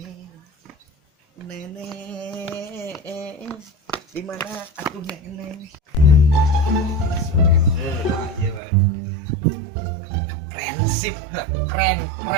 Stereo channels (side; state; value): left; drops out; at 8.6 s